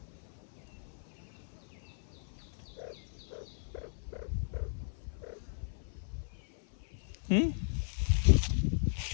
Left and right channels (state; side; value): silent; right; 53 dB below the other